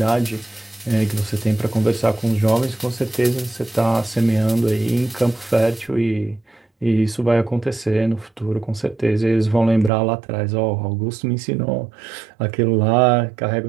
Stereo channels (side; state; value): left; drops out; at 9.9 s